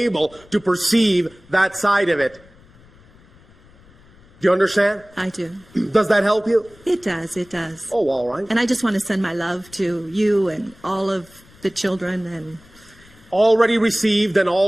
to perceive that side of it. Do you understand? I do. Does that help you? It does. It does. Oh, all right. And I just want to send my love to you and all of the children. And Already received and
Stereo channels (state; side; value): noise; left; rumble, 26 dB below the sound